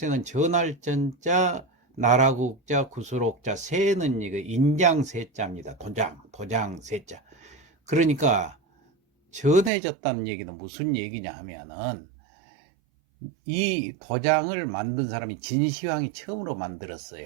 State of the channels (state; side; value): drops out; left; at 9.7 s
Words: 전할 전자, 나라국자, 구술옥자, 세는 이거 인장세자입니다. 도장 세자. 그러니까 전해졌다는 얘기는 무슨 얘기냐 하면은 이 도장을 만든 사람이 진시황이 처음으로